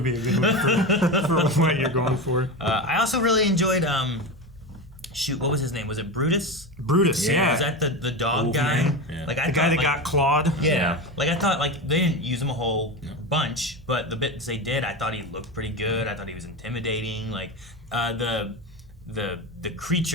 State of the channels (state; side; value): normal; both; correlation 0.21